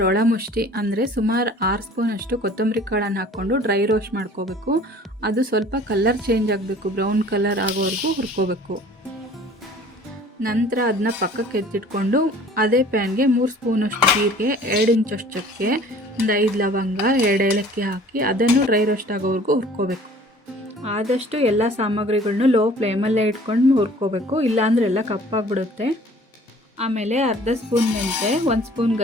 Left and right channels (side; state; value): both; normal; correlation 0.50